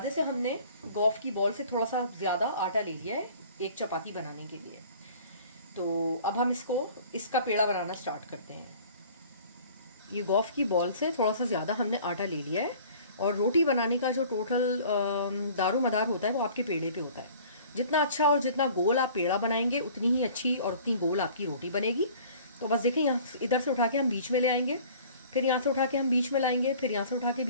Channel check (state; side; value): inverted; both; correlation -0.49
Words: से हमने गोफ की बॉल से थोड़ा सा ज़्यादा आटा ले लिया है एक चपाती बनाने के लिए। तो अब हम इसका पेड़ा बनाना स्टार्ट करते हैं। ये गोफ की बॉल से थोड़ा सा ज़्यादा हमने आटा ले लिया है और रोटी बनाने का जो टोटल दारोमदार होता है वो आपके पेड़े पे होता है। जितना अच्छा और जितना गोल आप पेड़ा बनाएंगे उतनी ही अच्छी और उतनी गोल आपकी रोटी बनेगी। तो बस देखें, यहाँ इधर से उठा के हम बीच में ले आएंगे, फिर यहाँ से उठा के हम बीच में लाएंगे, फिर यहाँ से उठा के